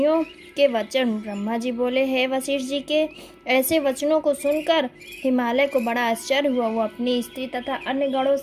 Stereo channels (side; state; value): both; identical; correlation 1.00